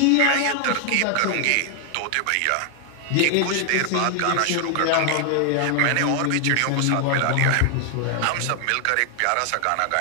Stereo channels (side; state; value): both; different; correlation 0.00